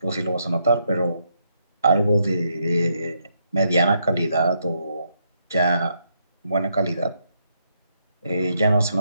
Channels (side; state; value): both; inverted; correlation -0.77